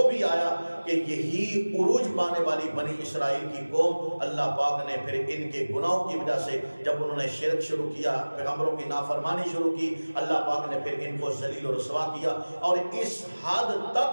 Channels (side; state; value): both; inverted; correlation -1.00